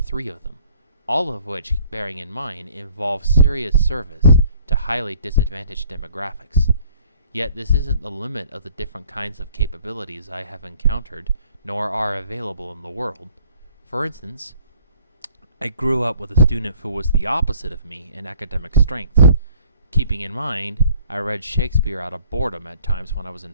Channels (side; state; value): both; inverted; correlation -0.58